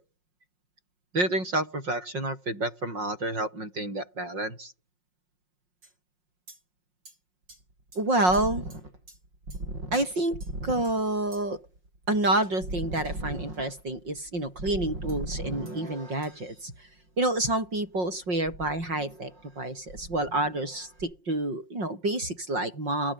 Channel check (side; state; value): left; late; 5.6 ms